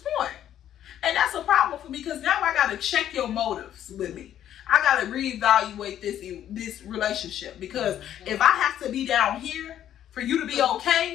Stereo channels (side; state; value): right; quieter; 10.9 dB